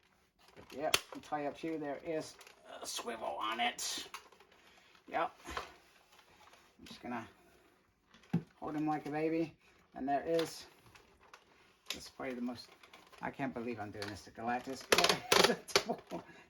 But yeah, entirely up to you. There is a swivel on it. Yep. I'm just gonna hold him like a baby, and there is, this is probably the most, I can't believe I'm doing this to Galactus.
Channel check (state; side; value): identical; both; correlation 1.00